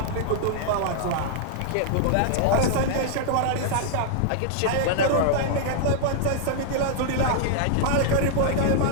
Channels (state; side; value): different; both; correlation -0.01